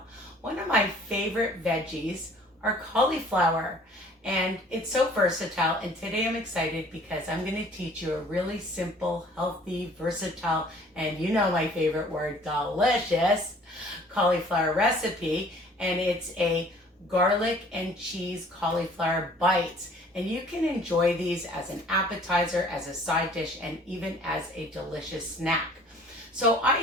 One of my favorite veggies are cauliflower, and it's so versatile, and today I'm excited because I'm going to teach you a really simple, healthy, versatile, and you know my favorite word, delicious cauliflower recipe, and it's a garlic and cheese cauliflower bites. And you can enjoy these as an appetizer, as a side dish, and even as a delicious snack. So I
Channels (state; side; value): normal; both; correlation 0.53